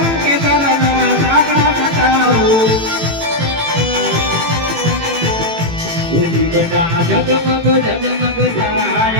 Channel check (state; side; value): late; left; 18 ms